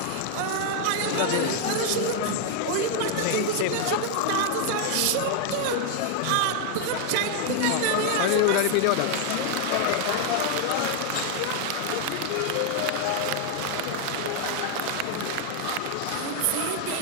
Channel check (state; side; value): different; both; correlation 0.00